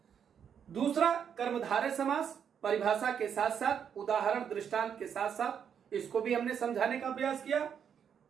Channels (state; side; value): quieter; left; 7.9 dB